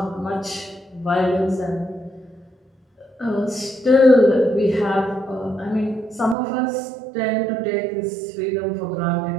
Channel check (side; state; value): left; drops out; at 6.4 s